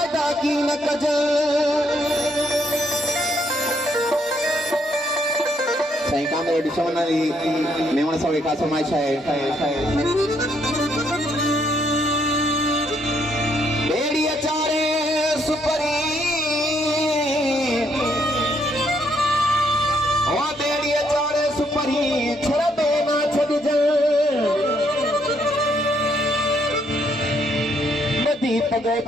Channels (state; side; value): normal; both; correlation 0.72